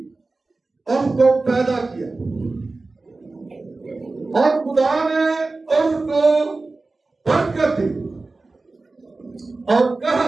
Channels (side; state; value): left; quieter; 3.5 dB